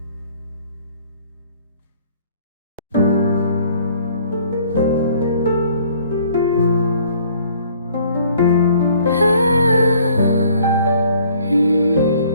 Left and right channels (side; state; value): both; inverted; correlation -0.58